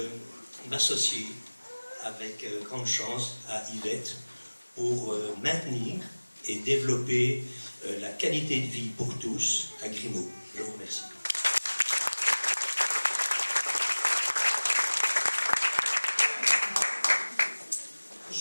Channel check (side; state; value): both; inverted; correlation -1.00